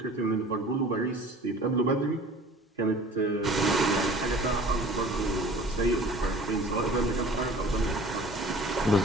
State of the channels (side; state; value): both; normal; correlation 0.46